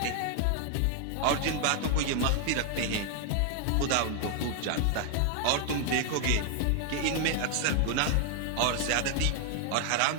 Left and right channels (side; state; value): both; different; correlation 0.00